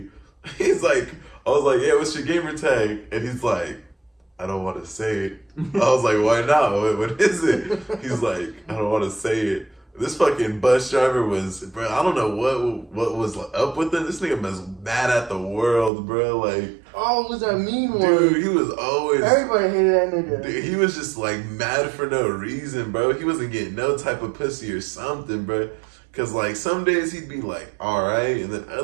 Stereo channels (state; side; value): drops out; left; at 15.9 s